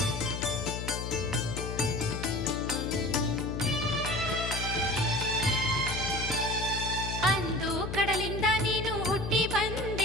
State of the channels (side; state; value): left; noise; hum, 5 dB below the sound